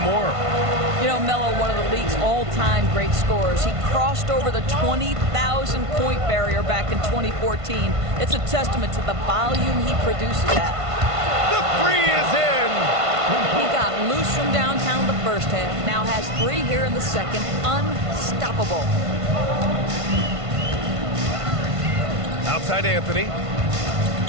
more. You know, Melo, one of the league's all-time great scorers. He crossed over the 20,000-point barrier back in 2014. It's a testament to the volume he produces at. The 3 is in. He got loose from downtown the first half, now has 3 here in the second. Unstoppable. Outside Anthony.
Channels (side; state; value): left; late; 1.5 ms